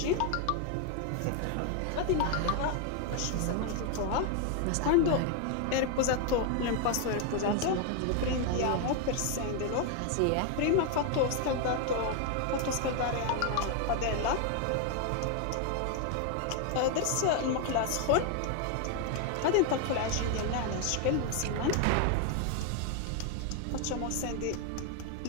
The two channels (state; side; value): different; both; correlation 0.01